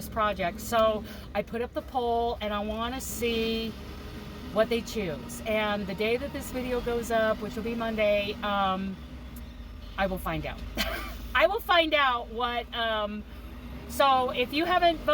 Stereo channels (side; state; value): both; identical; correlation 1.00